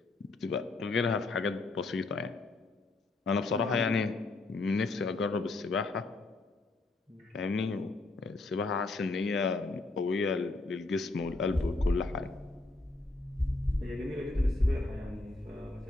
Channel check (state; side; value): quieter; right; 3.2 dB